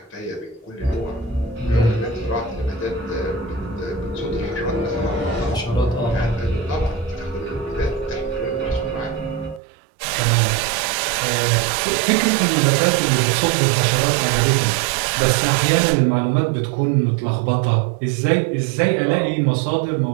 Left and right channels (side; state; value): left; drops out; at 9.6 s